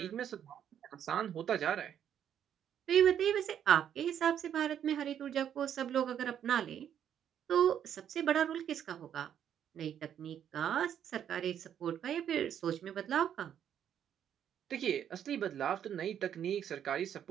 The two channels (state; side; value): quieter; left; 9.4 dB